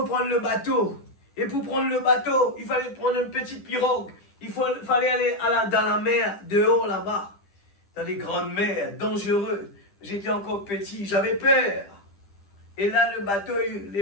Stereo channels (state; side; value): late; right; 10 ms